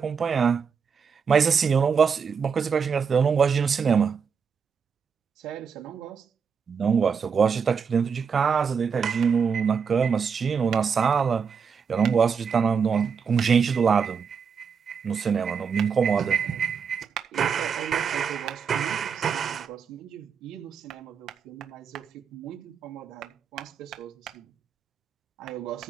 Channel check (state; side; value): quieter; left; 6.3 dB